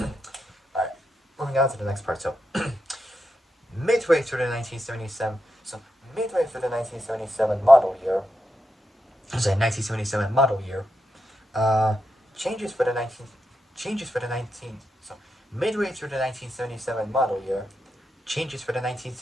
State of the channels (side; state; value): both; normal; correlation 0.86